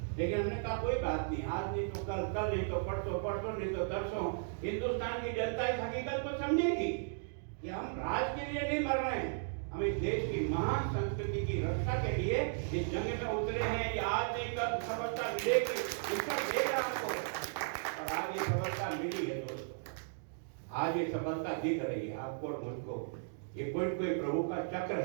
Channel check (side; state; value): left; silent; digital silence